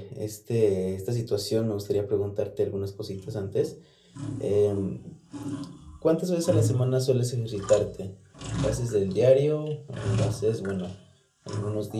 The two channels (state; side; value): identical; both; correlation 1.00